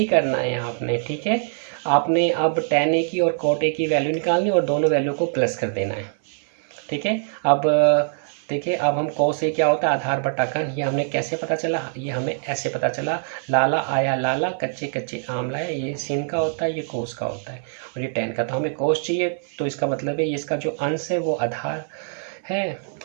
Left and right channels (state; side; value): silent; left; 63 dB below the other